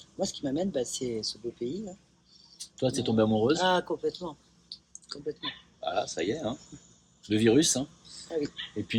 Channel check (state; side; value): identical; both; correlation 1.00